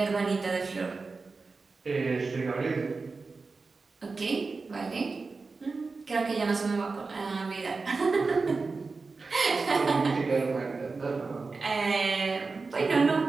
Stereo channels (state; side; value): quieter; left; 4.1 dB